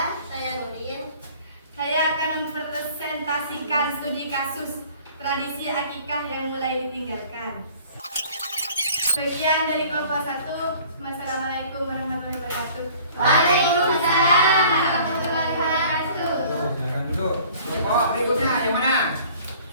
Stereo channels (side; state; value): both; inverted; correlation -0.51